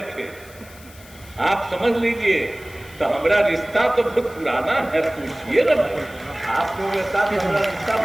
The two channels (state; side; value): noise; left; hiss, 22 dB below the sound